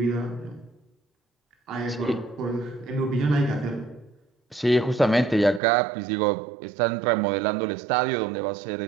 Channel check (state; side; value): drops out; left; at 5.6 s